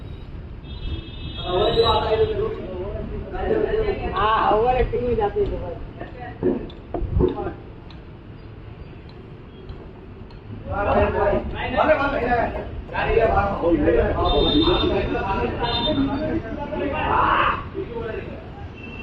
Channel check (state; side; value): identical; both; correlation 1.00